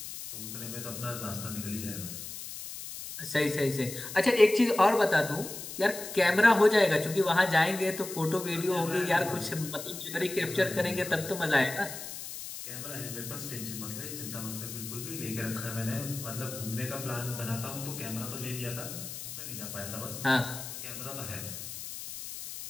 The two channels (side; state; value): left; noise; hiss, 9 dB below the sound